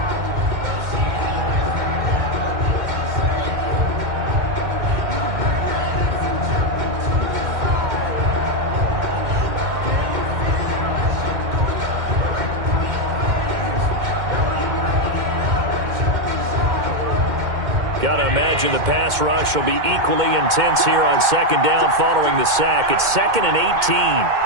Got to imagine the pass rush will be equally intense here on second down following the sack. It's 2nd and 18.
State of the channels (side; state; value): left; late; 2.1 ms